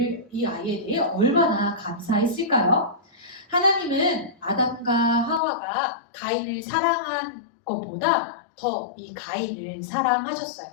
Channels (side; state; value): right; drops out; at 5.4 s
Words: 대해 얼마나 감사했을까요? 하나님은 아담과 하와가 가인을 사랑한 것보다 더 이 가인을 사랑하셨어요.